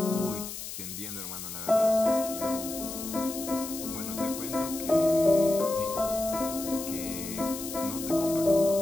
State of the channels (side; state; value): left; noise; hiss, 9 dB below the sound